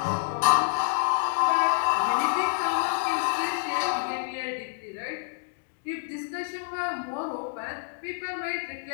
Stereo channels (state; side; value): silent; right; digital silence